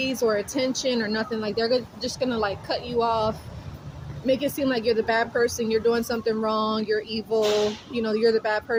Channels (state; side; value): identical; both; correlation 1.00